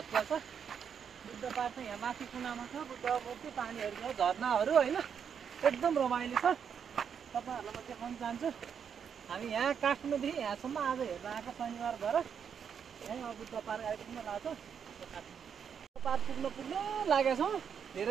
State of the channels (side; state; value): left; quieter; 7.4 dB